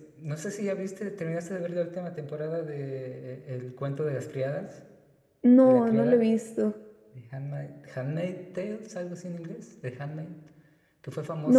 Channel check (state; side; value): identical; both; correlation 1.00